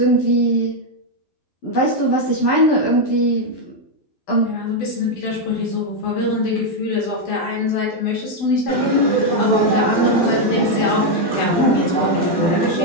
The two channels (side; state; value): right; late; 12 ms